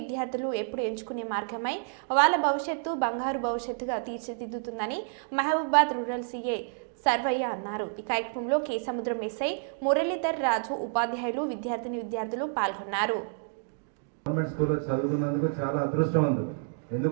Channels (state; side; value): silent; left; digital silence